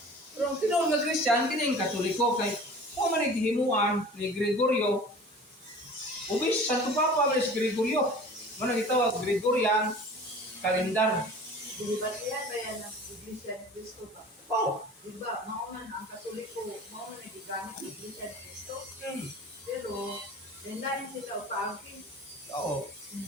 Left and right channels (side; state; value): both; normal; correlation 0.42